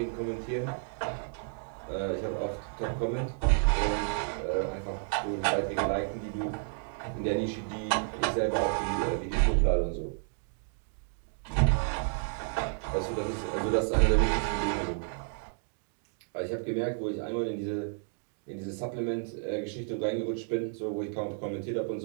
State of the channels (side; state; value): left; silent; 57 dB below the other